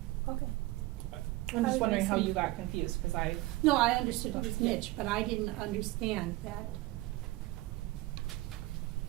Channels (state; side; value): quieter; left; 19.2 dB